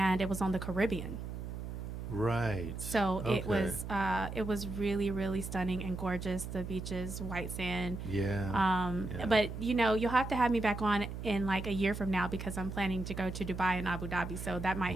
it was on the Caribbean. Right. So Okay. it was really, really stunning and gorgeous. The beaches, white sand. Yeah. Yeah. But you'll have to have me back on in like a year from now because I'm planning to go to Dubai and Abu Dhabi. So that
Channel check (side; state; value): right; noise; hum, 7 dB below the sound